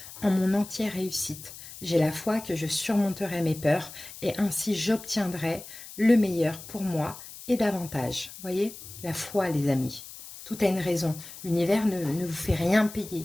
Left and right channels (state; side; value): noise; left; hiss, 15 dB below the sound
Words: en mon entière réussite. J'ai la foi que je surmonterai mes peurs et ainsi j'obtiendrai le meilleur pour moi et davantage. Voyez, la foi les amis, tout a une raison. L'univers ne vous fait rien